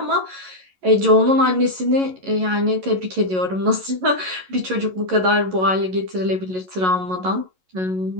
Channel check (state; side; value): late; left; 11 ms